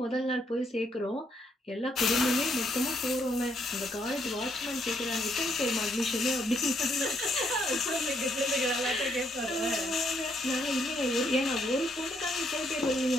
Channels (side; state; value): both; normal; correlation 0.73